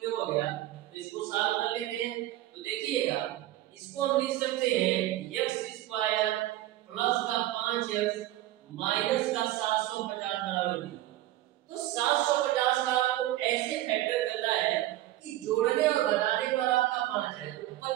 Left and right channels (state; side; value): quieter; left; 15.1 dB